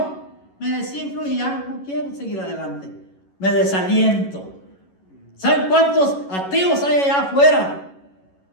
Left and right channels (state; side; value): late; right; 11 ms